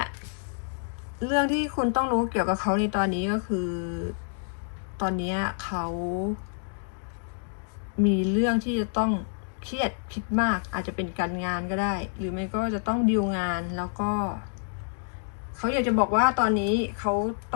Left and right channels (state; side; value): silent; right; digital silence